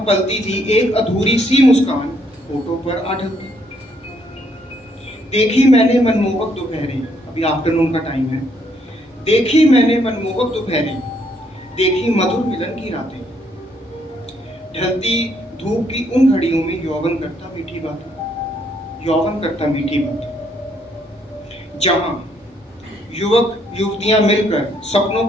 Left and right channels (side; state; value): both; normal; correlation 0.70